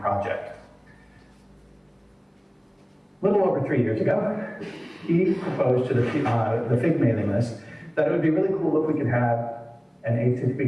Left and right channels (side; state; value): both; identical; correlation 1.00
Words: A little over 3 years ago, he proposed to the FIG mailing list that it would be really cool if we could have an